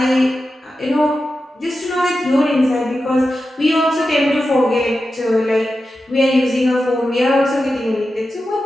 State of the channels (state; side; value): normal; both; correlation 0.91